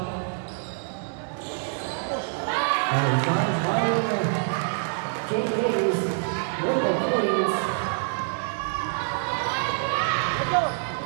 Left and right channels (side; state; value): left; silent; digital silence